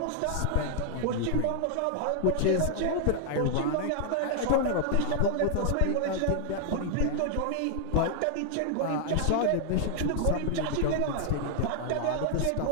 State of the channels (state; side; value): different; both; correlation 0.00